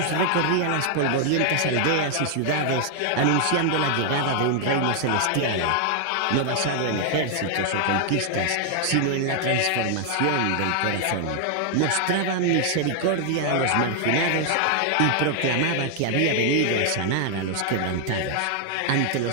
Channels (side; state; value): both; different; correlation 0.00